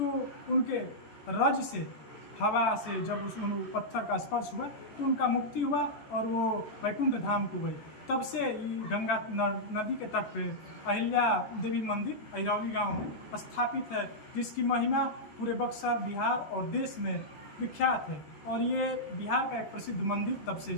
उनके रज से, हवा से जब उस पत्थर का स्पर्श हुआ तो उनका मुक्ति हुआ और वो वैकुंठ धाम को गई। तब से ये गंगा नदी के तट पे अहिल्या देवी मंदिर अहिरौली गांव में स्थापित है, जिसकी महिमा पूरे बक्सर, बिहार और देश में विख्यात है। और ये बिहार का एक प्रसिद्ध मंदिर तब से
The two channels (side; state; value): right; late; 14 ms